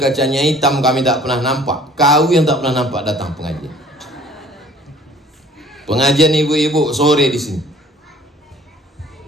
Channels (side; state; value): both; normal; correlation 0.53